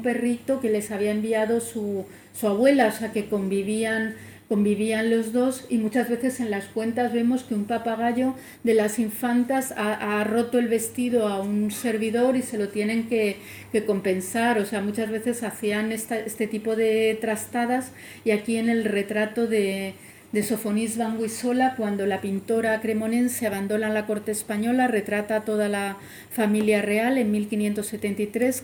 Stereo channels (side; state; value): both; identical; correlation 1.00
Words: perrito que les había enviado su abuela, o sea, que convivían los dos, y muchas veces en las cuentas vemos que un papagayo de las infantas ha roto el vestido a un servidor y se lo tienen que compensar, o sea, muchas veces hacían este tipo de trastadas. Y aquí en el retrato de Sofonis van Guisola, cuando la pintora cremonense abandona la corte española, retrata a toda la familia real en 1573,